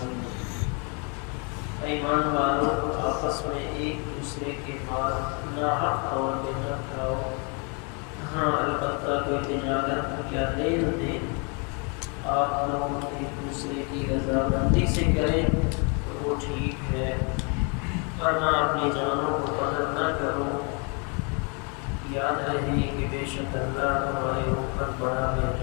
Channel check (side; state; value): right; quieter; 35.0 dB